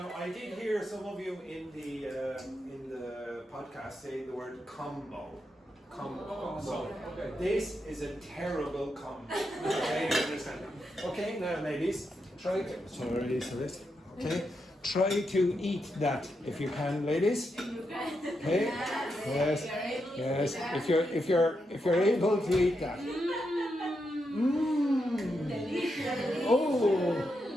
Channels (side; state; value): both; normal; correlation 0.84